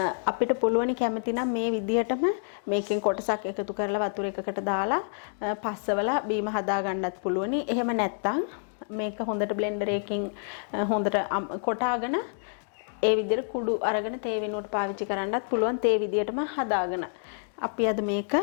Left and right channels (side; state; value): right; silent; digital silence